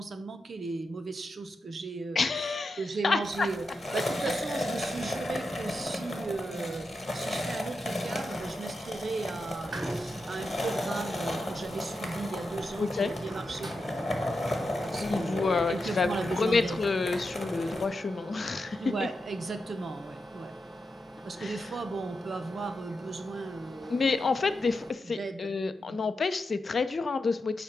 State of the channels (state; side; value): normal; both; correlation 0.88